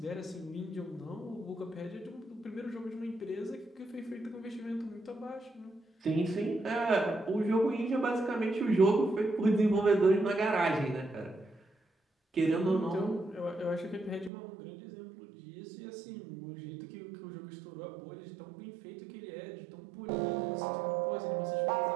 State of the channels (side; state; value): left; drops out; at 14.3 s